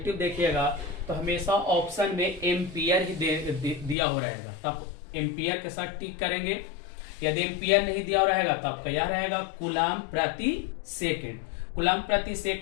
देखिएगा तो हमेशा ऑप्शन में एम्पियर ही दिया हो रहेगा, तब एम्पियर के साथ टिक करेंगे। यदि एम्पियर नहीं दिया रहेगा तो आपका यह रहेगा कूलम प्रति सेकेंड। कूलम प्रति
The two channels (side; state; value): right; drops out; at 4.0 s